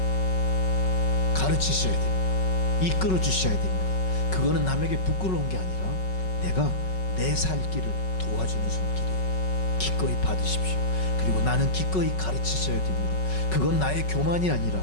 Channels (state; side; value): late; right; 5.4 ms